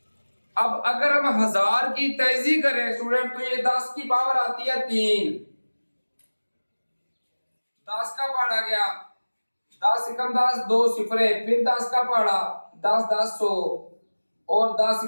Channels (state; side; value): inverted; both; correlation -1.00